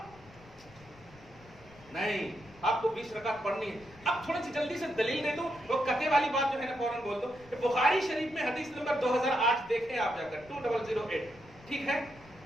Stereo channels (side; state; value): left; noise; rumble, 23 dB below the sound